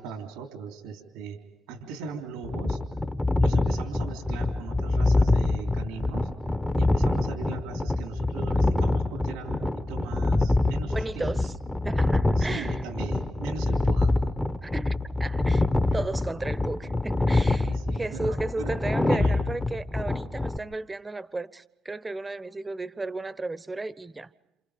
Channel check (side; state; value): both; normal; correlation 0.94